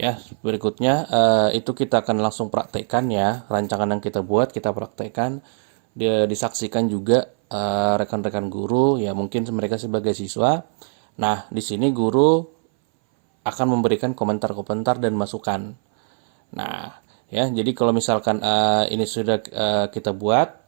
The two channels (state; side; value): silent; left; 61 dB below the other